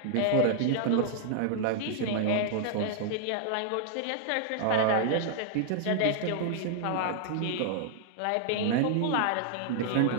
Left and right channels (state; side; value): different; both; correlation -0.01